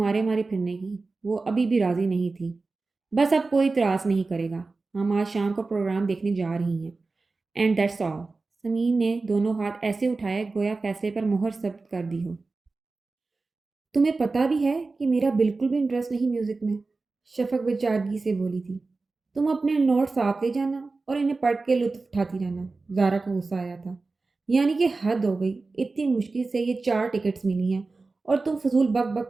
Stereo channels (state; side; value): quieter; left; 3.7 dB